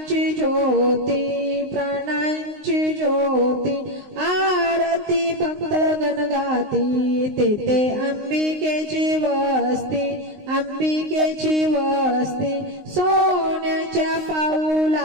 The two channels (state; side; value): late; left; 19 ms